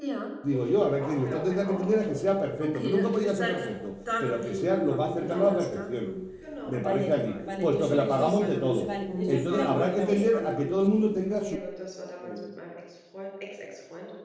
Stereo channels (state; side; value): identical; both; correlation 1.00